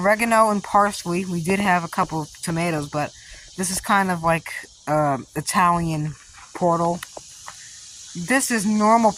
and parsley. We did have a couple of tomatoes, but this is kind of like Italian portal. This is normal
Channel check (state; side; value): identical; both; correlation 1.00